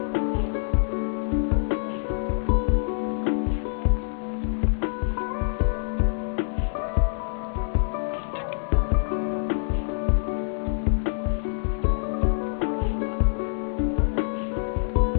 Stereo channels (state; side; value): silent; right; digital silence